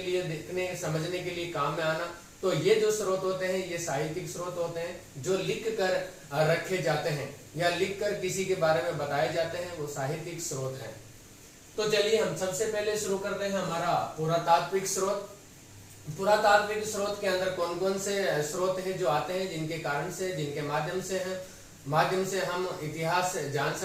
देखने समझने के लिए काम में आना। तो ये जो स्रोत होते हैं ये साहित्यिक स्रोत होते हैं, जो लिख कर रखे जाते हैं या लिख कर किसी के बारे में बताए जाते हैं, वो साहित्यिक स्रोत हैं। तो चलिए हम सबसे पहले शुरू करते हैं हमारा पुरातात्विक स्रोत। पुरातात्विक स्रोत के अंदर कौन कौन से स्रोत हैं जो आते हैं, जिनके कारण से, जिनके माध्यम से हम इतिहास जान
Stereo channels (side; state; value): both; identical; correlation 1.00